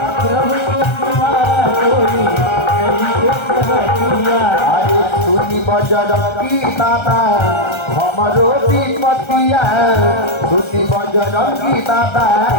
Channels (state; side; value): late; right; 1.3 ms